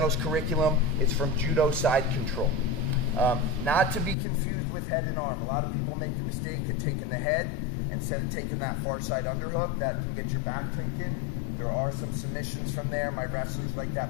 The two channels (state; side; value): drops out; right; at 4.2 s